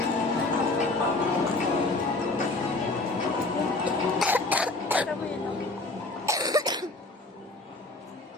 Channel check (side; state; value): right; quieter; 3.0 dB